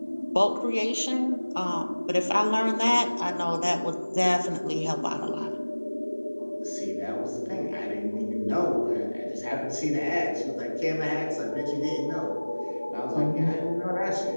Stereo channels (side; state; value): both; inverted; correlation -1.00